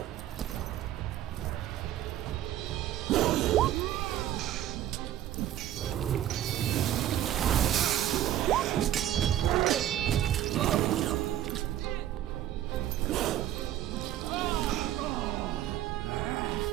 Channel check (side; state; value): left; quieter; 12.2 dB